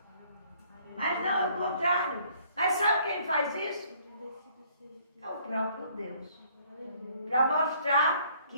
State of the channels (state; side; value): inverted; both; correlation -0.61